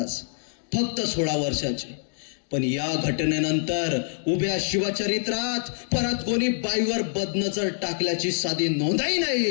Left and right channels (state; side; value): silent; right; digital silence